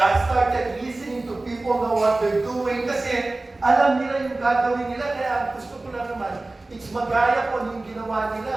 I started listening to people know what they're doing kasi alam nila yung gagawin nila, kaya gusto ko lang naman, it's magaya ko yung ginawa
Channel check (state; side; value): quieter; left; 3.0 dB